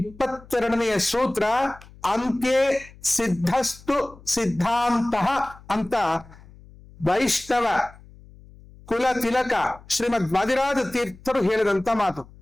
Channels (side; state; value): left; noise; hum, 22 dB below the sound